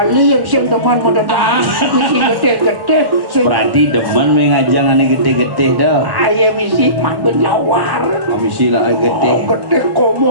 yang siang teman pada dah. Misi gede-gede. Berarti demen mengajang ane gede-gede dah. Ayah misi man berlawar. Misi lah gede. Gede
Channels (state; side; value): late; left; 1.1 ms